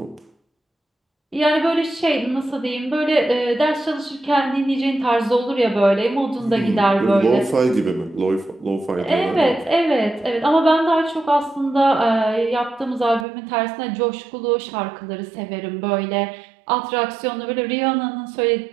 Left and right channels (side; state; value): left; drops out; at 13.2 s